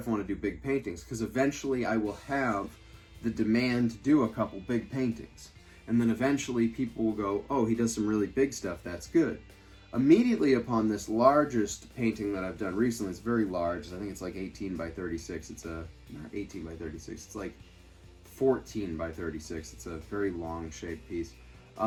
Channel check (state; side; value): identical; both; correlation 1.00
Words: I want to do big paintings? Because eventually I will have the demand to do a couple big paintings. And then eventually people will go, oh, he does some really big stuff, that's good. Immediately upon this largest painting that I've done recently, it's very large, I think it's like 18 by 36, not 18 by 36, it's like 14 by 36, it's a very long shaped piece.